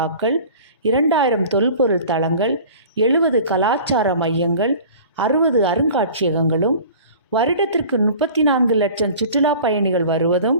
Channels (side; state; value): both; inverted; correlation -0.43